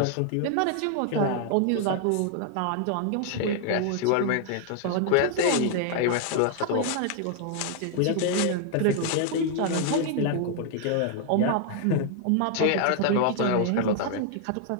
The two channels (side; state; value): both; different; correlation 0.00